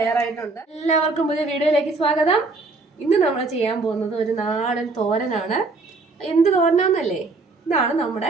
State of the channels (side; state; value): left; quieter; 3.6 dB